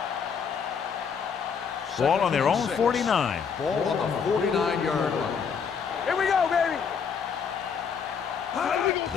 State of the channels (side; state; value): right; quieter; 6.5 dB